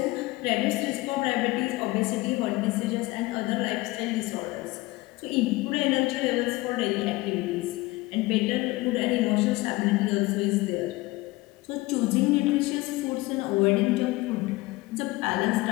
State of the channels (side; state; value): right; quieter; 20.9 dB